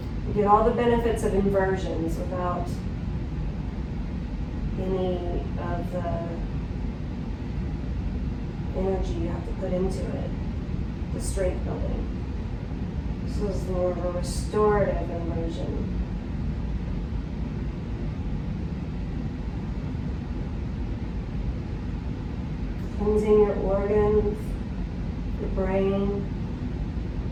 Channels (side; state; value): both; identical; correlation 1.00